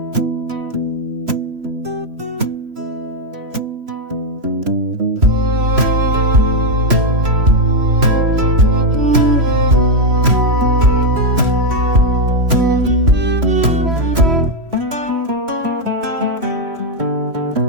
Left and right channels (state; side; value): late; left; 3.0 ms